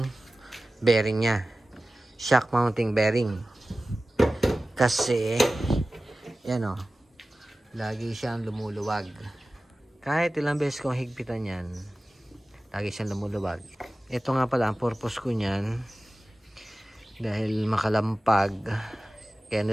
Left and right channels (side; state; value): both; normal; correlation 0.96